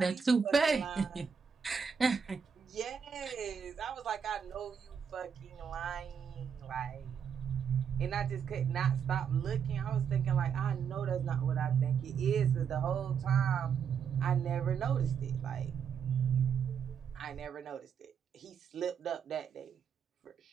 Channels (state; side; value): quieter; left; 7.1 dB